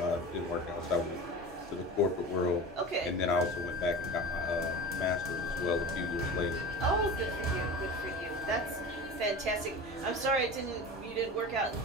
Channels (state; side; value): normal; both; correlation 0.32